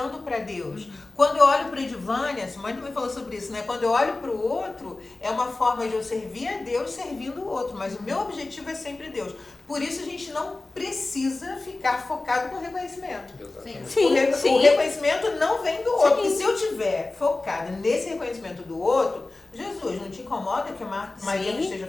para Deus. Quando eu olho para a Edvânia, a Simone também falou sobre isso, né? Quando eu olho para o outro, é uma forma de eu servir a Deus servindo o outro. Mas o meu objetivo é sempre Deus. Por isso, a gente não precisa ficar focado com reconhecimento. Exatamente. O reconhecimento não vem do outro. Sim. E se eu estiver focada nesse reconhecimento do outro, Jesus, não te incomoda que a Maria não esteja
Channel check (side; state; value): right; quieter; 3.2 dB